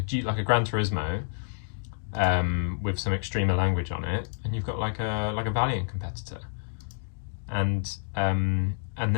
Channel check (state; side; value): silent; right; digital silence